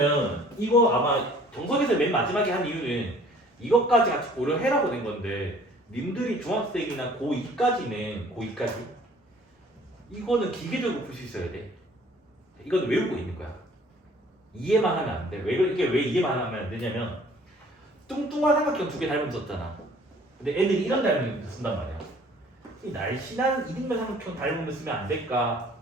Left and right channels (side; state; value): both; normal; correlation 0.54